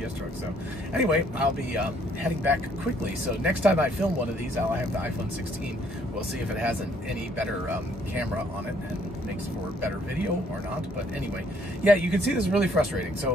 UPS truck. So anyway, I'll be heading back quickly. So next time I film one of these, I'll have the iPhone 16. We'll see if it has any better camera on it and makes for better video or not. But anyway, yeah, you can see this is really frustrating.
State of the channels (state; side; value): normal; both; correlation 0.65